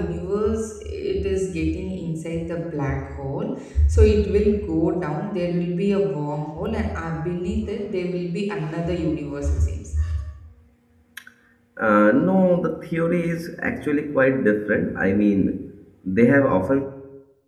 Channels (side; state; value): both; identical; correlation 1.00